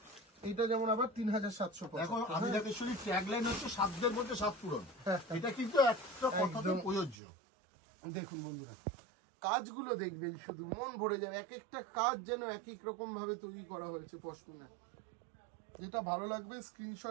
এটা যেমন আবার 3775। এখন আমি দেখেছি ট্যাগলাইন হচ্ছে সাধ্যের মধ্যে সাত পূরণ, এটা কিন্তু একটা কথাতে প্রযোজ্য। দেখুন বন্ধুরা কাজগুলো দেখবেন, শুধু মন ভরে যাবে। এক একটা কাজ যেন এক এক রকম ভাবে তৈরি করা হয়েছে পশমিনা। যেটা ভালো লাগবে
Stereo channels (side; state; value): left; drops out; at 7.2 s